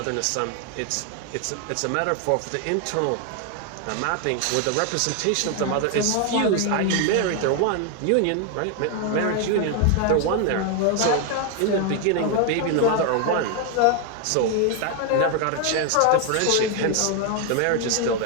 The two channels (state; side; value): different; both; correlation 0.00